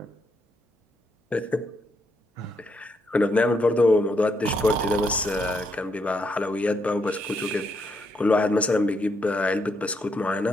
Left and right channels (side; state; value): both; normal; correlation 0.77